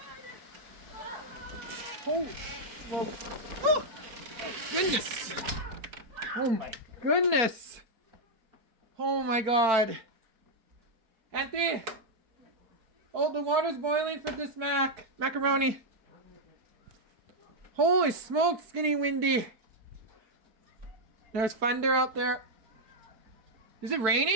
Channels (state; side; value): late; left; 4.6 ms